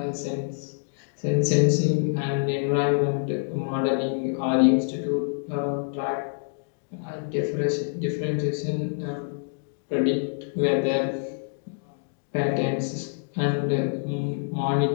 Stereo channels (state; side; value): silent; right; digital silence